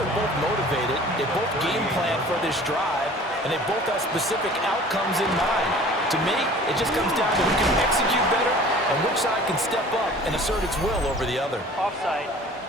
both motivated. They both game plan for this drive, and they both have specific outcomes in mind. To me, it just comes down to who can execute better and which side can step up and assert its will over the other. Offside,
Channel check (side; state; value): both; normal; correlation 0.46